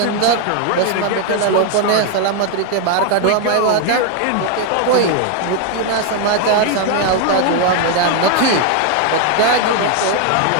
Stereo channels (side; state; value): both; different; correlation 0.00